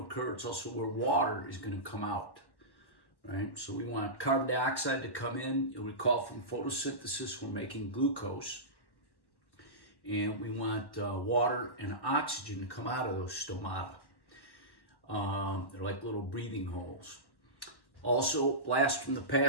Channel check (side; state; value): right; late; 1.1 ms